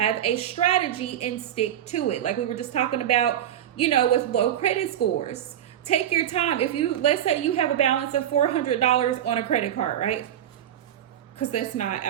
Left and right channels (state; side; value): quieter; left; 10.8 dB